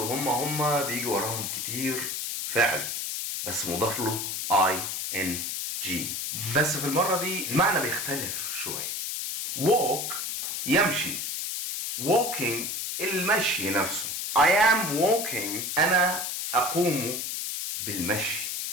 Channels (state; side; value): noise; left; hiss, 3 dB below the sound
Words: هم بيجي وراهم كتير فعل بس مضاف له ing. بس في المرة دي المعنى بيختلف شوية. walk يمشي، walking المشي نفسه. I am walking أنا أقوم بالمشي